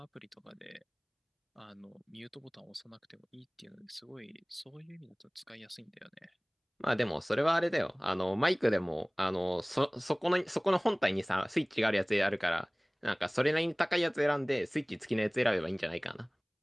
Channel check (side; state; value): both; identical; correlation 1.00